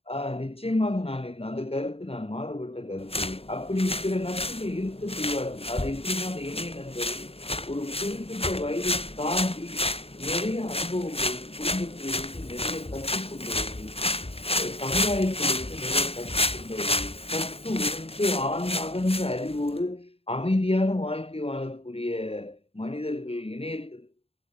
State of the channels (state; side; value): late; right; 0.28 ms